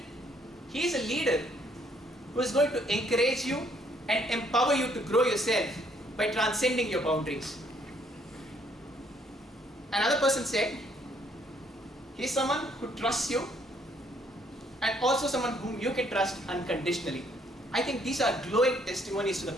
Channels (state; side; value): normal; both; correlation 0.67